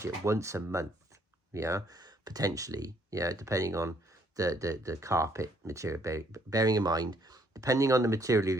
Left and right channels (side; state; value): both; normal; correlation 0.66